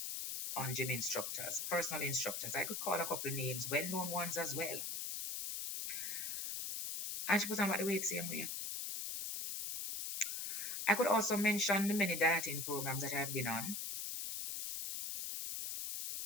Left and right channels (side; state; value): left; noise; hiss, 3 dB below the sound